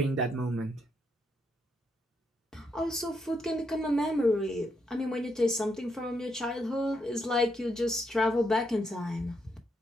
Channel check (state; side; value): normal; both; correlation 0.78